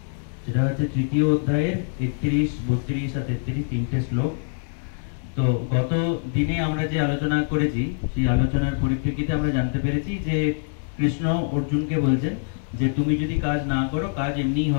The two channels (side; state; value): right; silent; digital silence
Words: সেটা হচ্ছে তৃতীয় অধ্যায়ের 31, 32 আর 33 তিনটে শ্লোক। তো গত দিনে আমরা যে আলোচনা করেছি সেই আলোচনার পরিপ্রেক্ষিতে আমরা জানতে পেরেছি যে কৃষ্ণ অর্জুনকে বলছেন যে তুমি যদি কাজ না করো কাজ এমনিই